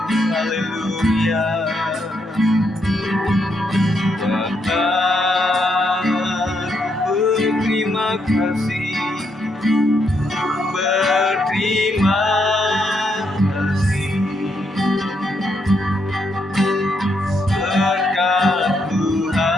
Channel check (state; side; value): normal; both; correlation 0.77